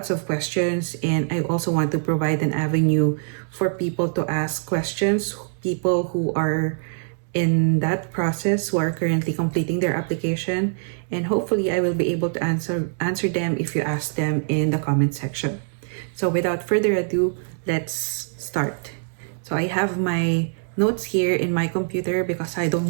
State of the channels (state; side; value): silent; left; digital silence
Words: of questions, and I also want to provide an avenue for people to ask questions, people who are in that process, who are currently completing their application, and hopefully I will be able to answer them if you ask them in the comment section. So without further ado, let's start. So I have my notes here in my computer because I don't